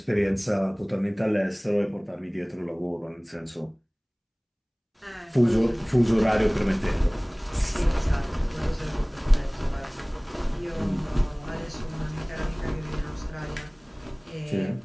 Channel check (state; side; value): identical; both; correlation 1.00